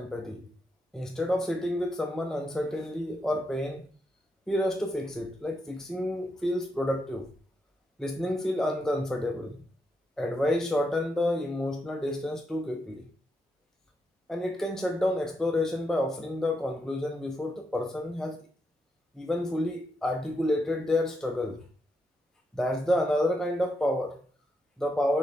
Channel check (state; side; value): normal; both; correlation 0.82